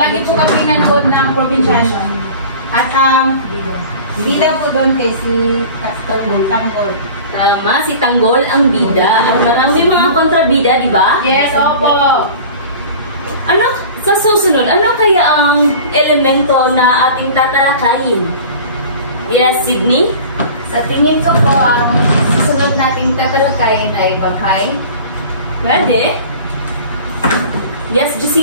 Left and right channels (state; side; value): inverted; both; correlation -0.40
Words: po kami nanood ng probinsyano. At ang bida po doon kay si Tanggol. Tama, si Tanggol ang bida. At marami mga kontrabida, di ba? Yes, opo. Ano? Sa susunod, ano kaya ang elemento na ating tatalakayin? Yes, Sydney? Sa tingin ko po, ang susunod nating tatalakayin ay baghay. Pwede? Yes,